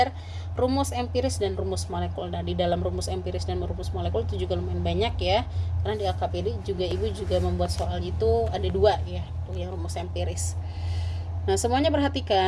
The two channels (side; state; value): both; identical; correlation 1.00